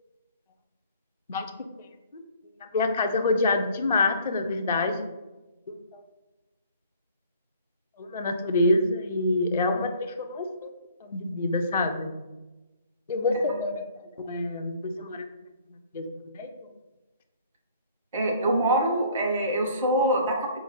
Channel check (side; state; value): both; inverted; correlation -0.55